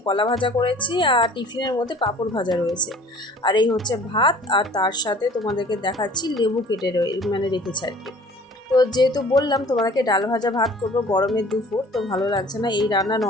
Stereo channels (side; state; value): both; normal; correlation 0.50